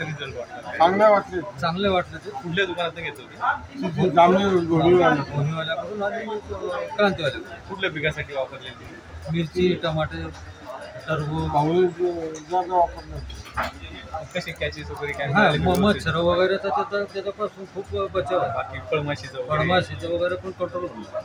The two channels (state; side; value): identical; both; correlation 1.00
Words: रिझल्ट वाटला? चांगले वाटले. ते कुठल्या दुकानात घेतलं होते? जामनेर भूमीवाल्याकडून आणि क्रांतीवाल्याकडून. कुठल्या पिकासाठी वापरले? मिरची, टमाटे, टरबूज. कसे कॅचेस वगैरे काय? मच्छर वगैरे तर त्याच्यापासून खूप बचाव आहे. बाकी फळमाशीचं वगैरे पण कंट्रोल होईल.